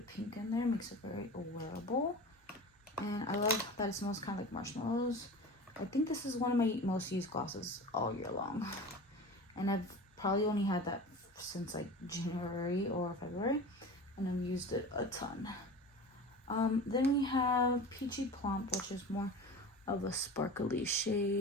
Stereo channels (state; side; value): normal; both; correlation 0.34